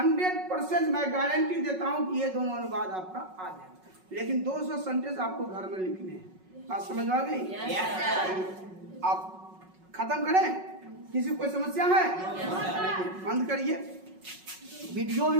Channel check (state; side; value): late; left; 5.4 ms